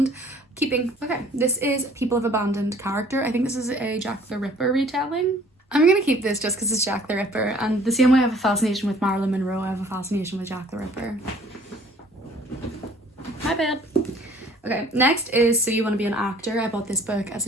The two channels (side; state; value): both; normal; correlation 0.55